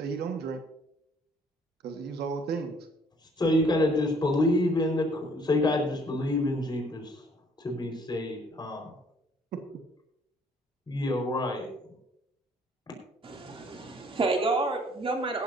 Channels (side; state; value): both; normal; correlation 0.61